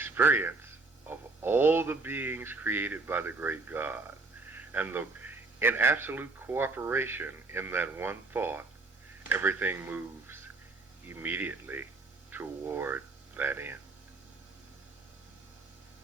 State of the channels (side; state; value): left; quieter; 3.6 dB